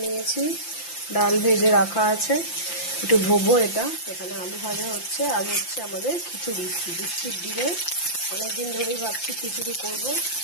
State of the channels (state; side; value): late; right; 5.8 ms